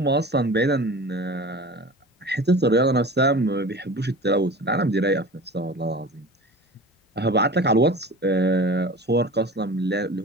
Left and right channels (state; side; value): normal; both; correlation 0.37